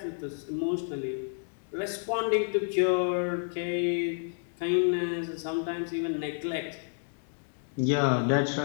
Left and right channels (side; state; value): right; silent; digital silence